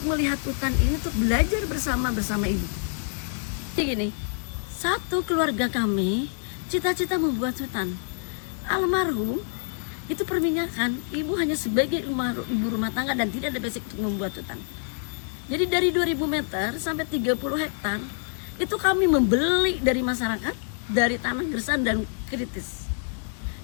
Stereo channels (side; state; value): right; silent; 61 dB below the other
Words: melihat hutan ini, untuk belajar bersama ibu. Jadi gini, satu keluarga kami cita-cita membuat hutan. Almarhum itu perminyakan, ibu hanya sebagai ibu rumah tangga dan tidak ada basic untuk membuat hutan. Jadi dari 2000 meter sampai 30 hektar itu kami membeli dari masyarakat, dari tanah gersang dan kritis.